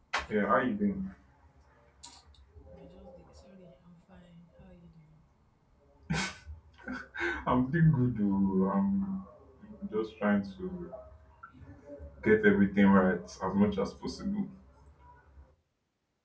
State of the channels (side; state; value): both; identical; correlation 1.00